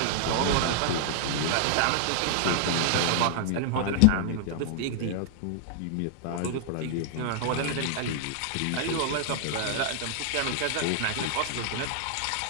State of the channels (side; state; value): both; different; correlation 0.00